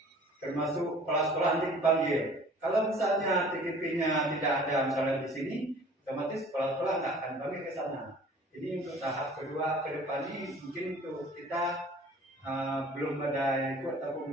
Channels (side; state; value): both; normal; correlation 0.49